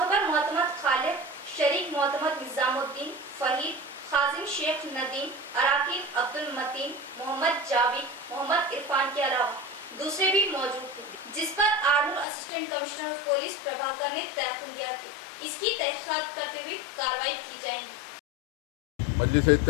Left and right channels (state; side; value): drops out; right; at 12.2 s